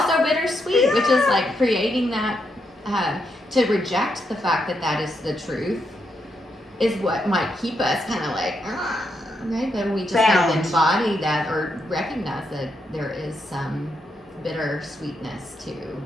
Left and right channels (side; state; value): both; normal; correlation 0.81